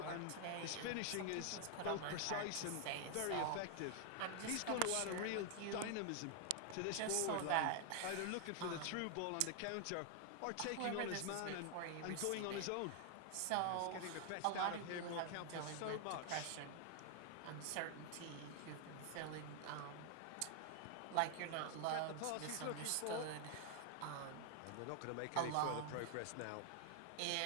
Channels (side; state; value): both; different; correlation 0.00